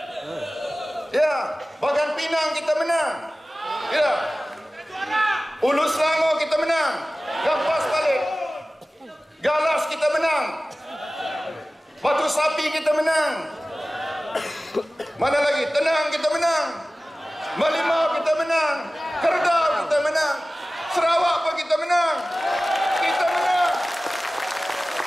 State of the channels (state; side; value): normal; both; correlation 0.97